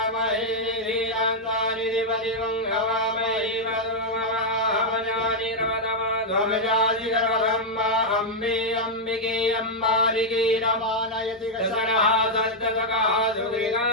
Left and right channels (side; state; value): both; normal; correlation -0.02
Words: निधियान्वा निधिपतिगुं भवामहे वदुमहावजानि रवदमाध्वमजानि गर्भब्रह्मा अम्बे अम्बिके अम्बालिके रमानयति दशरः सद्गतकः सुगृगां